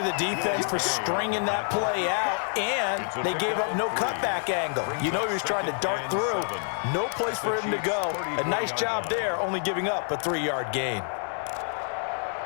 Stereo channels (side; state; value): right; silent; 59 dB below the other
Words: defense for stringing that play out, and they gave up no cutback angle. You know he was trying to dart through. No place for him to go. A nice job there, only giving up a 3-yard gain.